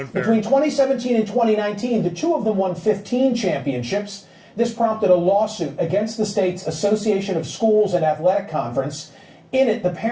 Between 2017 and 2019, the 2 of them won 15 championships. This prompted a lawsuit against the state's Association of Schools and Athletic Conference. In it, the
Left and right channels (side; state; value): both; identical; correlation 1.00